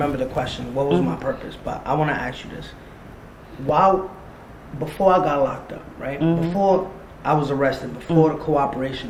the question, what was my purpose? But I want to ask you this. Before I got locked up, right, before I was arrested, before the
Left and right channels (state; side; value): identical; both; correlation 1.00